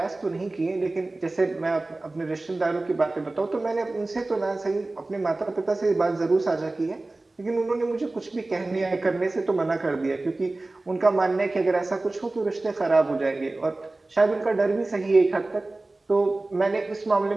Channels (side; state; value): left; quieter; 3.0 dB